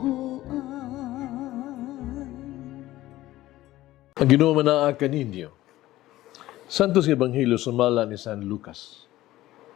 Ang Ginoo manaa kaninyo. Santos Ebanghelyo sumala ni San Lucas.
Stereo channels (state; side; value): quieter; right; 15.9 dB